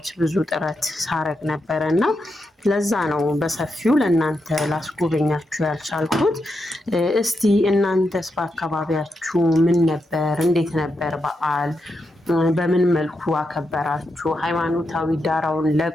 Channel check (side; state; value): both; normal; correlation 0.85